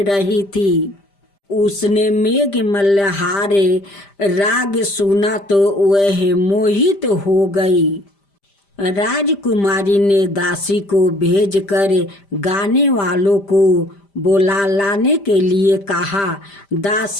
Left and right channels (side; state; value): right; late; 5.0 ms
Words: रही थी। उसने मेघ मल्हारे राग सुना तो वह मोहित हो गई। राजकुमारी ने दासी को भेजकर गाने वालों को बुला लाने के लिए कहा।